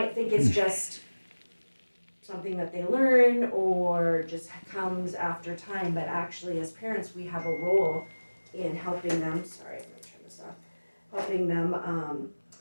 think it's just something that they learn or just comes after time, but actually as parents we have a role in helping them, sorry, I'm gonna turn this off, helping them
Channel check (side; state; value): both; inverted; correlation -1.00